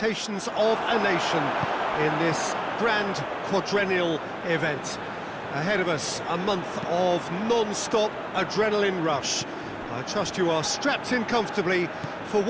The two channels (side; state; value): both; identical; correlation 1.00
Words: of a nation in this grand quadrennial event. Ahead of us, a month of non-stop adrenaline rush. I trust you are strapped in comfortably for